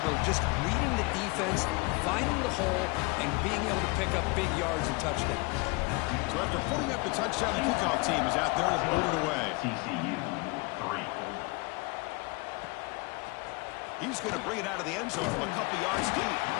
of just reading the defense, finding the hole, and being able to pick up big yards and touchdowns. So after putting up the touchdown, the kickoff team is out there to put it away. TCU, 3. He's going to bring it out of the end zone from a couple yards deep.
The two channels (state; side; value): quieter; right; 27.4 dB